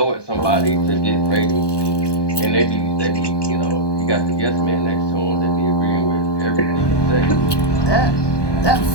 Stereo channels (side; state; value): right; late; 1.2 ms